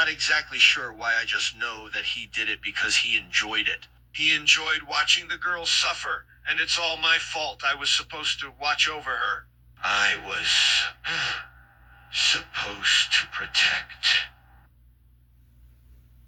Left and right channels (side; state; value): both; identical; correlation 1.00